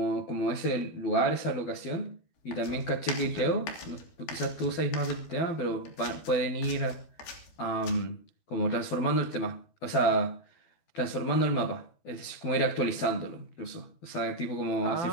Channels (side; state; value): right; late; 12 ms